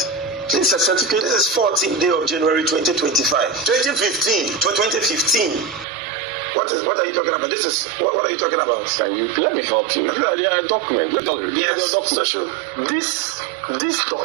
This is a certificate. This is 14th day of January 2025. 2015. What are you talking about? This is what are you talking about? Can you let me help you? There are documents. Yes, document. Sure. This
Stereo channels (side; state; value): left; drops out; at 5.9 s